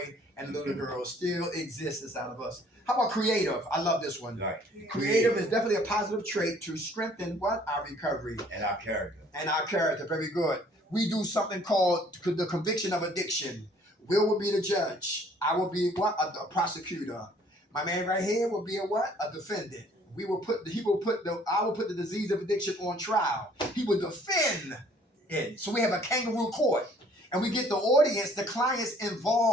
and the little girl still exists inside of us. How about creative? I love this one. Right. Creative is definitely a positive trait to strengthen what? Our recovery And our character. and our character. Very good. We do something called the conviction of addiction. Will be the judge. I will be what? A prosecutor. My man right here will be a what? A defendant. I will put the disease of addiction on trial. He will defend it. So we have a kangaroo court. And we get the audience, the clients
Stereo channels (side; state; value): both; normal; correlation 0.58